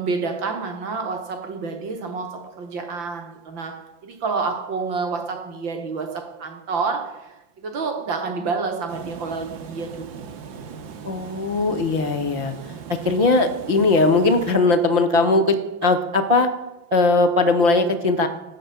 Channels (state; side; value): late; left; 5.8 ms